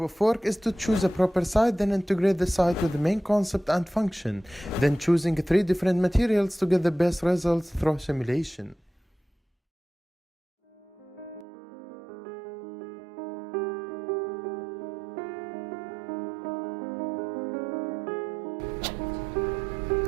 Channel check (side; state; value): left; drops out; at 11.5 s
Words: of work is to choose a proper site, then integrate the site with the main concept and function, then choosing 3 different materials to get the best results through simulation.